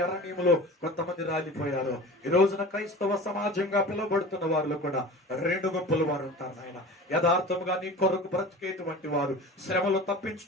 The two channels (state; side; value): normal; both; correlation 0.36